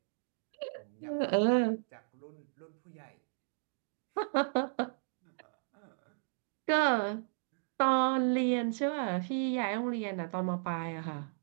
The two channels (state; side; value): silent; left; digital silence